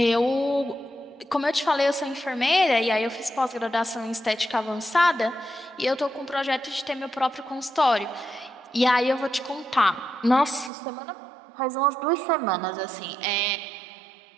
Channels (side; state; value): left; drops out; at 10.7 s